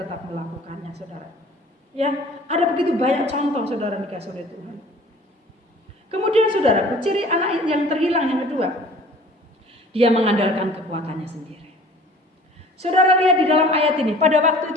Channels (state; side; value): normal; both; correlation 0.48